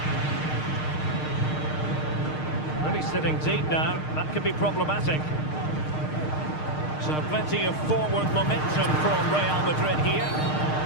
Really sitting deep now, that could be problematic. So plenty of forward momentum from Real Madrid here.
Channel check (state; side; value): late; right; 6.5 ms